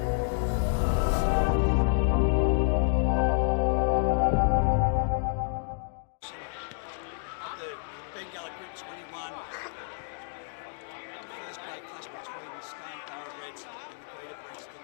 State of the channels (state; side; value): silent; right; digital silence